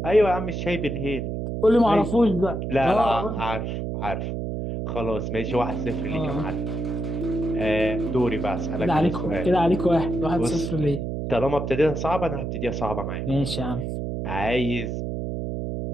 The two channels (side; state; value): right; noise; hum, 3 dB below the sound